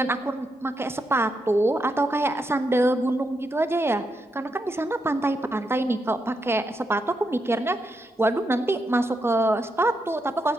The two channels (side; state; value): both; normal; correlation 0.82